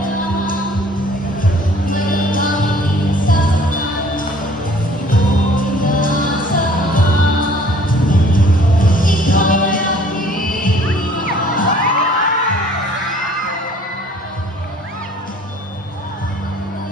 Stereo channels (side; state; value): both; normal; correlation 0.54